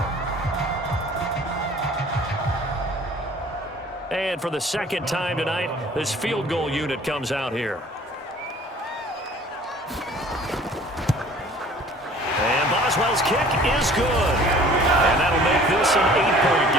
And for the 2nd time tonight, this field goal unit comes out here. And Boswell's kick is good. And that'll make this an 8-point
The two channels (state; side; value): normal; both; correlation 0.50